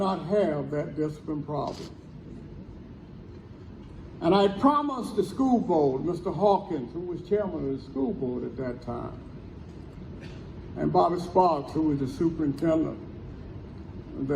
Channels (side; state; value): both; identical; correlation 1.00